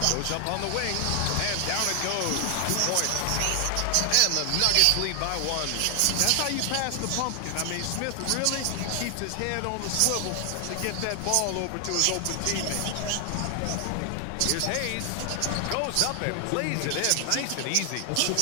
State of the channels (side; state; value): both; different; correlation 0.00